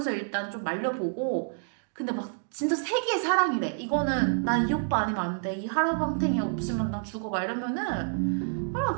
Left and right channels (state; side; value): silent; left; digital silence